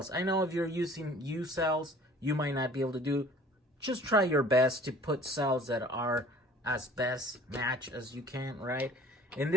I know if you're using U cells, you might not be able to do. Just try your best to put cells that are as best match as you can, right? In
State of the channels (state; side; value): normal; both; correlation 0.50